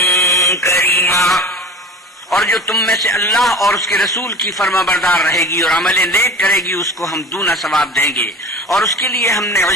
كريما. اور جو تم میں سے اللہ اور اس کے رسول کی فرما بردار رہے گی اور عمل نیک کرے گی اس کو ہم دونا ثواب دیں گے اور اس کے لیے ہم نے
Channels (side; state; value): both; normal; correlation 0.36